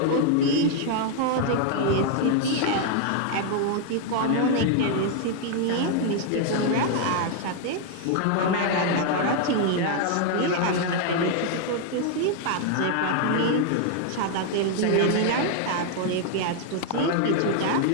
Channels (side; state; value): both; different; correlation 0.00